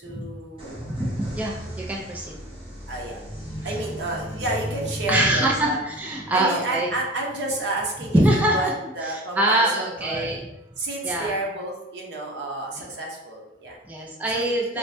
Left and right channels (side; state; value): both; normal; correlation 0.37